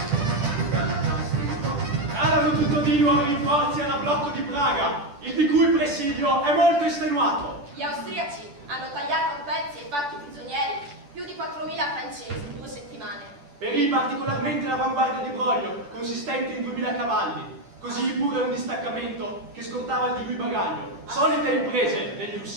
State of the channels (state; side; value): late; left; 10 ms